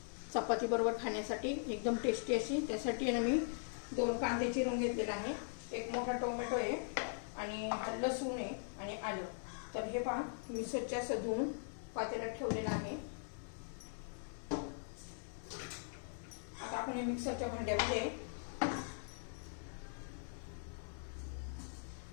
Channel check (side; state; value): right; silent; 51 dB below the other